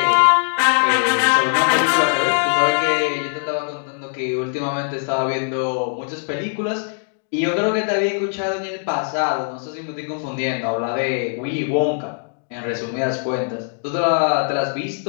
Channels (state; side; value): silent; right; digital silence